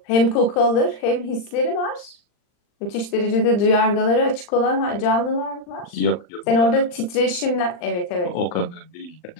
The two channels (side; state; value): right; late; 39 ms